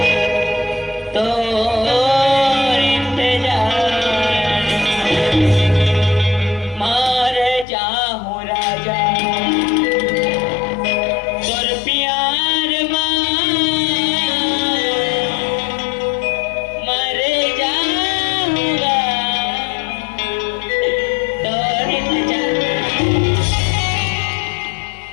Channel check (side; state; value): right; drops out; at 7.7 s